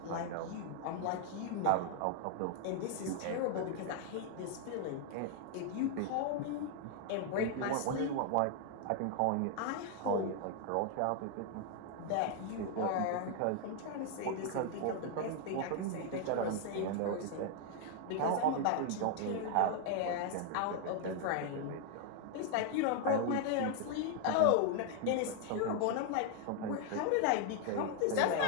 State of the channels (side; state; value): both; different; correlation 0.00